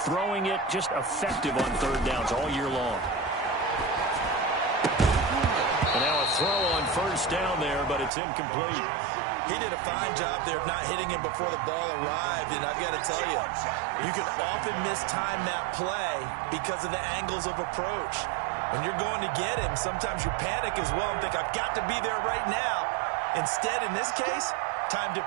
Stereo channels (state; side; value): drops out; left; at 8.1 s